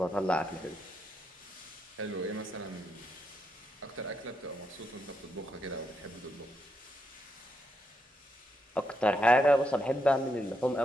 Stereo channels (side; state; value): both; normal; correlation 0.80